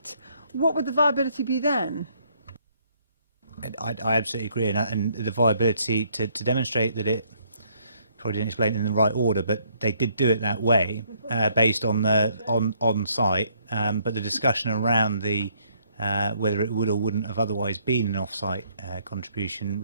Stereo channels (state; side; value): inverted; both; correlation -0.68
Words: what would the viability be then? I absolutely agree, and the viability to demonstrate that it, probably didn't explain it in the right order, but they did do it that way, based on the on site. But the discussion around the whether it would or wouldn't have otherwise been an off-site contribution